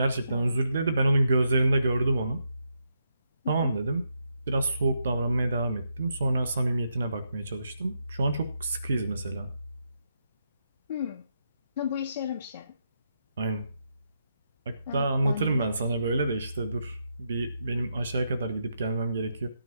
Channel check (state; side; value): inverted; both; correlation -0.81